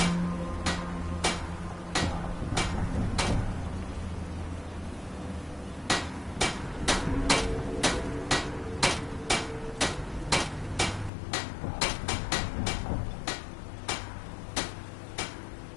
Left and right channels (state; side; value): drops out; right; at 11.1 s